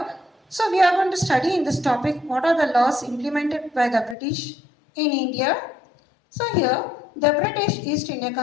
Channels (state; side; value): drops out; right; at 4.2 s